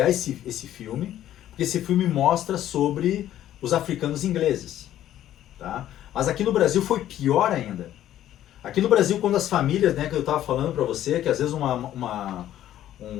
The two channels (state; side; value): quieter; right; 12.3 dB